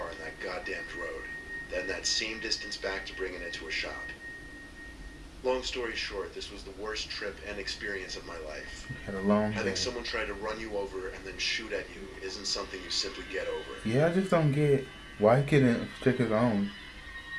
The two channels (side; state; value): both; identical; correlation 1.00